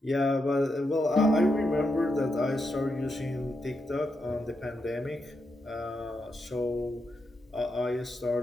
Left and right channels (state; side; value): normal; both; correlation 0.84